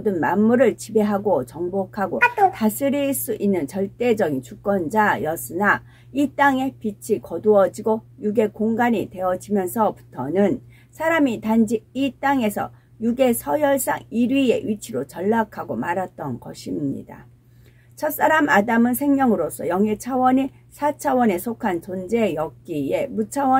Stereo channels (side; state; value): both; identical; correlation 1.00